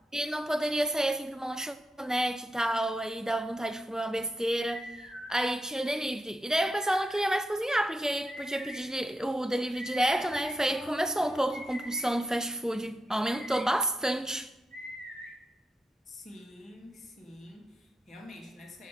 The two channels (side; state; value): both; normal; correlation 0.86